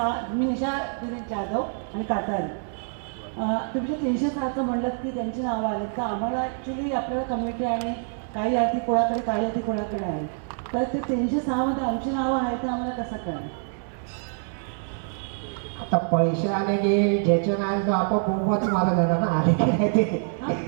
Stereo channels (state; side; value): silent; left; 61 dB below the other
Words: मी निशा दिलीप जाधव आणि कातारी. तुम्ही जे 306चं म्हणलं की त्यांची नावं आलेत का, आम्हाला ॲक्च्युली आपल्याला कमिटी आणि काही यादी कोणाकडे काही यादी कोणाकडे आहे, तर ते 306 मध्ये आमची नावं आहेत ते आम्हाला कसं कळेल. आता पैसे आले की ज्याचे नाही तो आपण बोंबच मारत येणार ना, आले की नाही ते.